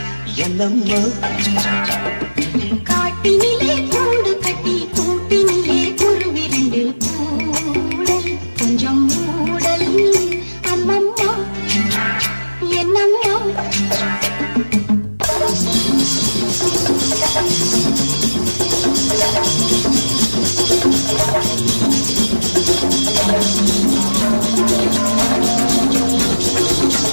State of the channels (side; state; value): both; inverted; correlation -1.00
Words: என்னம்மா காட்டினிலே கூடு கட்டி கூட்டினிலே குருவிரண்டு கூடல் கொஞ்சம் மூடல் அம்மம்மா என்னம்மா